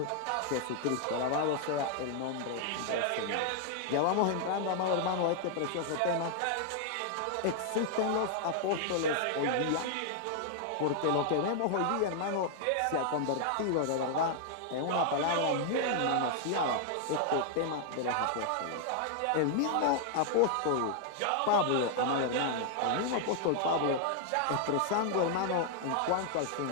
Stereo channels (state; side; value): different; both; correlation 0.00